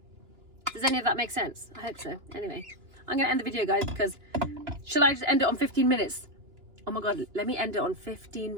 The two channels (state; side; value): late; left; 2.9 ms